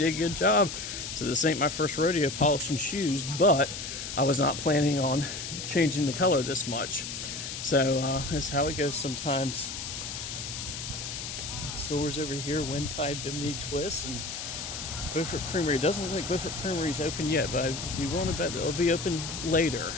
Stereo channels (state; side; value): noise; left; hiss, 7 dB below the sound